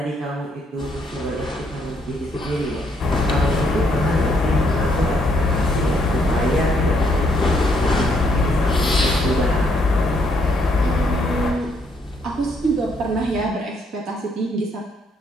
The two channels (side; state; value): both; normal; correlation 0.71